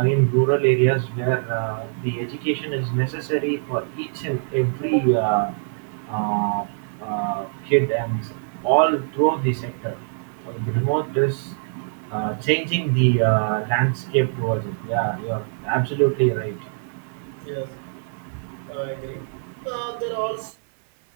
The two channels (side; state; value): left; silent; 57 dB below the other